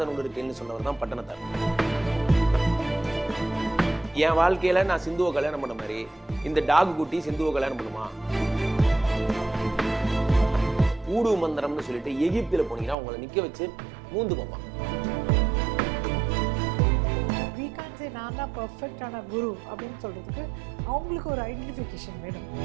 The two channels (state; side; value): drops out; left; at 13.0 s